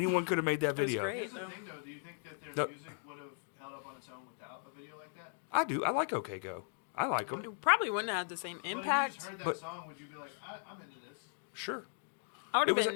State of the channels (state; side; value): silent; right; 53 dB below the other